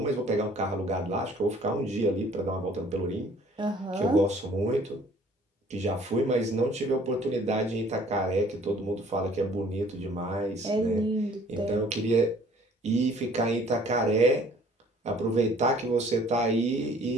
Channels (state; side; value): normal; both; correlation 0.55